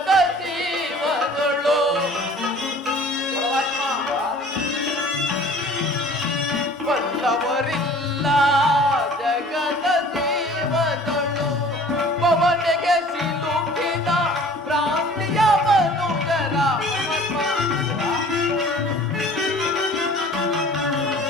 ಜೀವನಗಳು ಬಲ್ಲವರಿಲ್ಲ ಜಗದ ಜೀವನಗಳು ಪವನಿಗೆ ಸಿಲುಕಿದ ಭ್ರಾಂತಿಯ ಮನುಜರ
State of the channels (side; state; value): both; normal; correlation 0.48